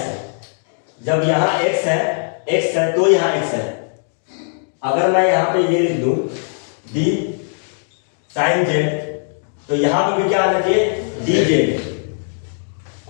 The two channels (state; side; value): silent; right; 66 dB below the other